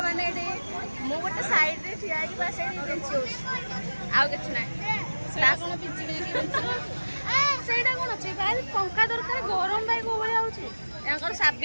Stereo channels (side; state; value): both; inverted; correlation -1.00